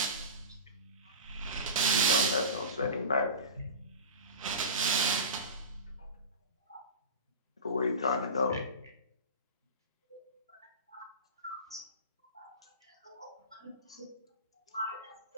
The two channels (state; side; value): inverted; both; correlation -0.30